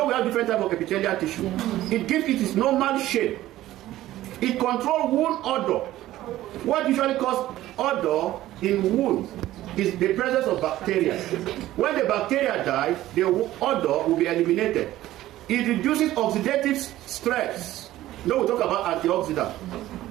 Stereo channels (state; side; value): quieter; left; 14.9 dB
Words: we have different types of epithelial tissue. It gives it its normal shape. It controls wound odor. What usually causes odor in wounds is the presence of bacteria. When the bacteria die, the odor will be eliminated. It reduces oxidative stress. Now we talk about antioxidant.